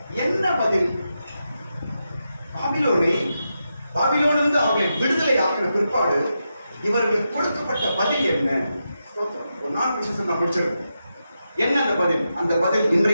என்ன பதில்? பாபிலோனிலிருந்து அவர்களை விடுதலை ஆக்கின பிற்பாடு இவர்களுக்கு கொடுக்கப்பட்ட பதில் என்ன? ஒரு 4 விஷயம் நான் முடிச்சிருக்கேன். என்ன அந்த பதில்? அந்த பதில்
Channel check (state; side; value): inverted; both; correlation -0.87